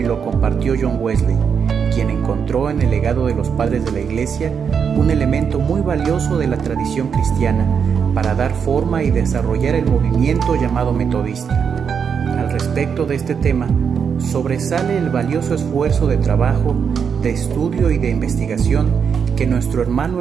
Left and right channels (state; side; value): quieter; left; 6.8 dB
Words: lo compartió John Wesley, quien encontró en el legado de los padres de la iglesia un elemento muy valioso de la tradición cristiana para dar forma y desarrollar el movimiento llamado metodista. Al respecto de este tema, sobresale el valioso esfuerzo de trabajo, de estudio y de investigación que nuestro hermano